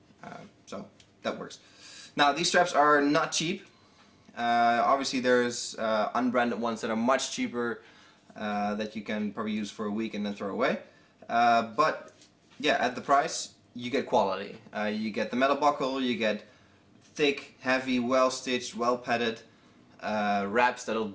So that works. Now these straps are not cheap. Obviously there's unbranded ones that are much cheaper that you can probably use for a week and then throw away. But yeah, at the price you get quality. You get the metal buckle, you get thick, heavy, well stitched, well padded wraps that'll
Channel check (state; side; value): identical; both; correlation 1.00